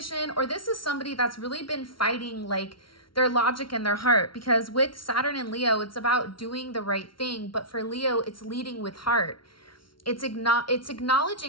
or this is somebody that's really been fighting like their logic and their heart, because with Saturn and Leo, it's about doing the right thing. But for Leo, it's leading with heart. It's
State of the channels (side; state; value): right; late; 0.74 ms